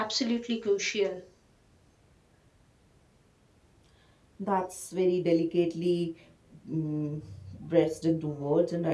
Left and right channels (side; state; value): both; identical; correlation 1.00